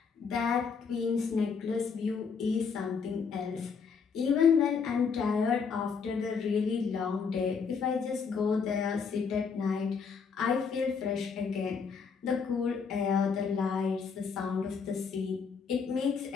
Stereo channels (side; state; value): right; quieter; 5.8 dB